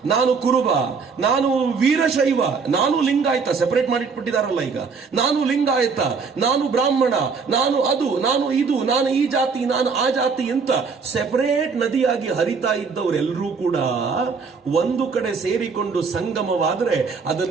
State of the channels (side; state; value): left; quieter; 5.2 dB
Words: ನಾನು ಕುರುಬ, ನಾನು ವೀರಶೈವ, ನಾನು ಲಿಂಗಾಯತ, ಸೆಪರೇಟ್ ಮಾಡಿಟ್ಬಿಟ್ಟಿದಾರಲ್ಲ ಈಗ. ನಾನು ಲಿಂಗಾಯತ, ನಾನು ಬ್ರಾಹ್ಮಣ, ನಾನು ಅದು, ನಾನು ಇದು, ನಾನು ಈ ಜಾತಿ, ನಾನು ಆ ಜಾತಿ ಅಂತ ಸೆಪರೇಟ್ ನದಿಯಾಗಿ ಹರಿತಾ ಇದ್ದವರೆಲ್ಲರೂ ಕೂಡ ಒಂದು ಕಡೆ ಸೇರಿಕೊಂಡು ಸಂಗಮವಾದ್ರೆ